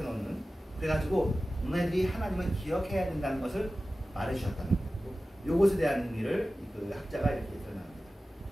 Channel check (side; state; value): both; normal; correlation 0.95